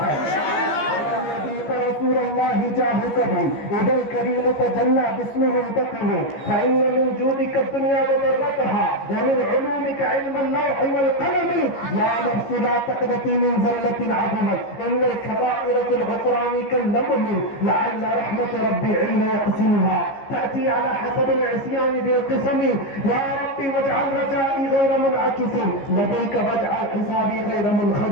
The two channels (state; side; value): late; right; 15 ms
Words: رسول الله جاهكم إذا الكريم تجلى باسمه انتقم فإن من جودك الدنيا وضرتها ومن علومك علم اللوح والقلم يا نفس لا تقنطي من زلة عظمت إن الكبائر في الغفران كاللمم لعل رحمة ربي حين يقسمها تأتي على حسب العصيان بالقسم يا ربي واجعل رجائي غير منعكس لديك واجعل حسابي غير